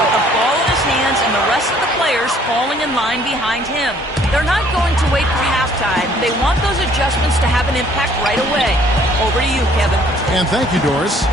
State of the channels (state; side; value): normal; both; correlation 0.60